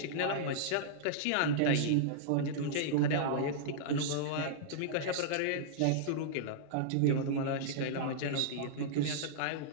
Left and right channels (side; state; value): both; different; correlation -0.02